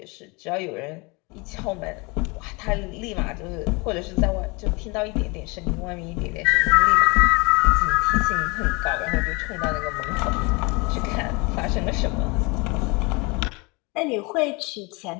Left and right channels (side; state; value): right; quieter; 27.7 dB